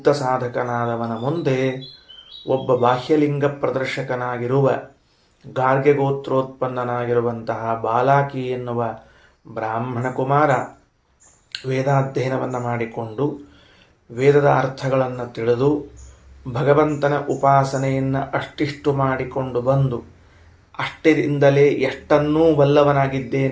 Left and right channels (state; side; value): identical; both; correlation 1.00